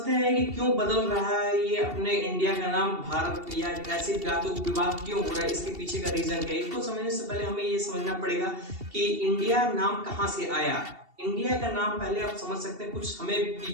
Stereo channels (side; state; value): left; late; 2.7 ms